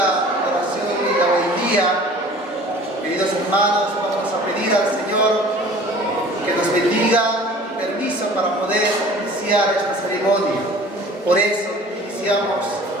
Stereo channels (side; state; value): both; normal; correlation 0.46